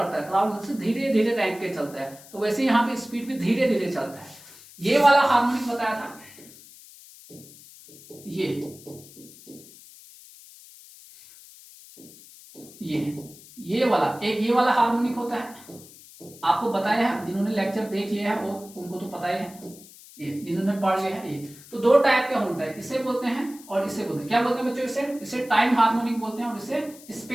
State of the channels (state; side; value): noise; left; hiss, 20 dB below the sound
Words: है, क्राउल से धीरे धीरे रैंक के चलता है, तो वैसे यहाँ पे स्पीड भी धीरे धीरे चलता है। ये वाला हार्मोनिक बताया था, ये वाला एक, ये वाला हार्मोनिक होता है, आपको बताया है, जिन्होंने लेक्चर देख लिया है वो उनको तो पता ही है, ये जिन्होंने पढ़ लिया है। ये तो दो टाइप का होता है, इसे बोलते हैं और इसे बोलते हैं, क्या बोलते हैं बच्चों, इसे टाइम हार्मोनिक बोलते हैं और इसे